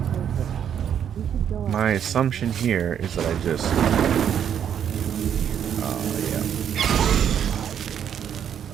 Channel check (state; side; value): quieter; left; 8.9 dB